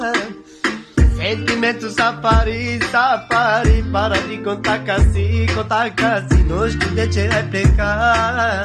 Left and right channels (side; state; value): both; identical; correlation 1.00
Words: Sentimento safari, safari, para de contar casi, não sei de te explicar.